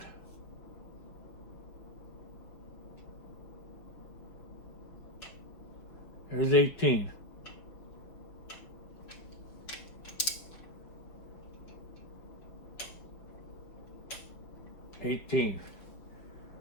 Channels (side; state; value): right; late; 5.6 ms